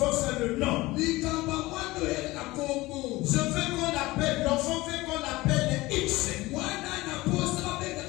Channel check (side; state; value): right; quieter; 19.9 dB